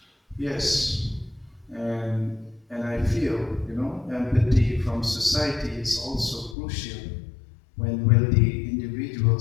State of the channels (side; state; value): right; drops out; at 6.6 s